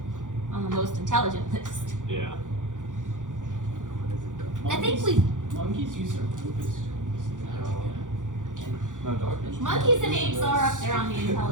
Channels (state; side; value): late; left; 0.87 ms